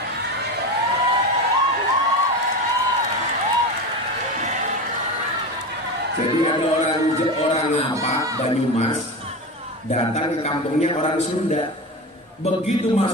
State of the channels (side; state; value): both; normal; correlation 0.24